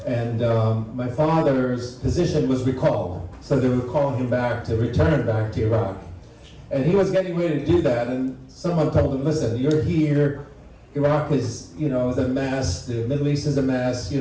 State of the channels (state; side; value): identical; both; correlation 1.00